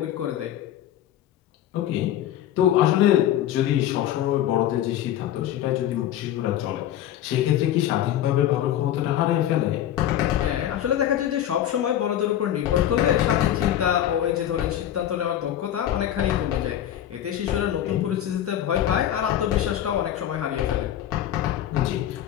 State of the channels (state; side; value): quieter; right; 11.6 dB